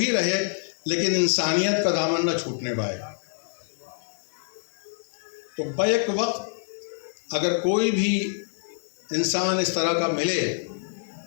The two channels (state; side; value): silent; right; 61 dB below the other